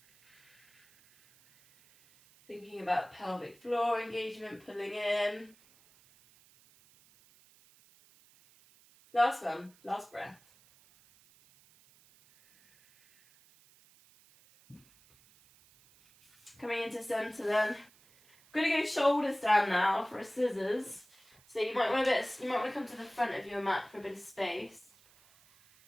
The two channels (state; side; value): noise; right; hiss, 28 dB below the sound